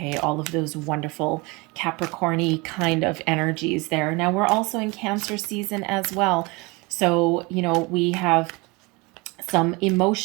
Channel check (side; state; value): left; quieter; 25.9 dB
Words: All of those wonderful Capricorn-y kind of energies there. Now, we're also in Cancer season as well. So, we have some